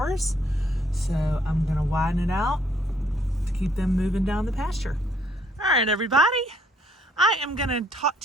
So I'm gonna widen it out to keep them moving down the pasture. All right, everybody. I am gonna talk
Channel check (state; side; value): normal; both; correlation 0.66